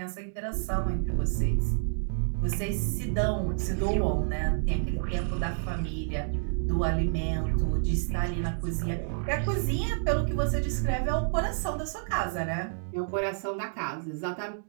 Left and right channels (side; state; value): left; silent; digital silence